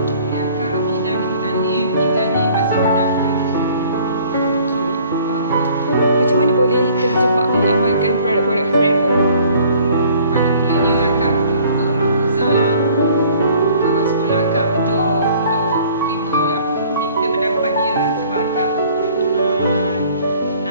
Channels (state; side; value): inverted; both; correlation -0.55